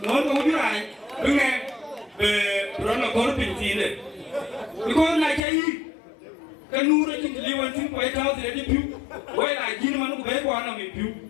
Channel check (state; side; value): drops out; right; at 5.4 s